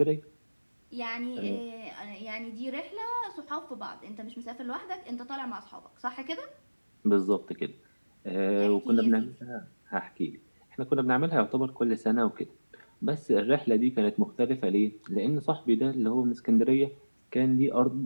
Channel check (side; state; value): both; inverted; correlation -1.00